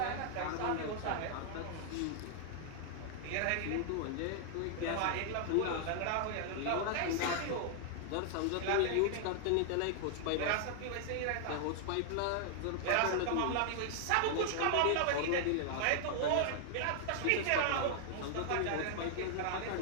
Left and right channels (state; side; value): different; both; correlation 0.00